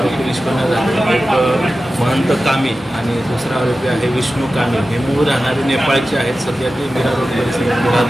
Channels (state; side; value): normal; both; correlation 0.94